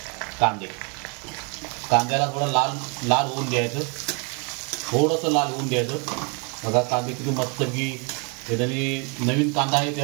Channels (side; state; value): left; quieter; 35.3 dB